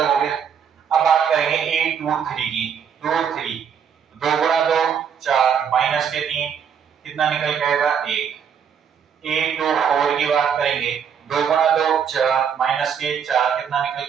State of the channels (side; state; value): left; quieter; 7.6 dB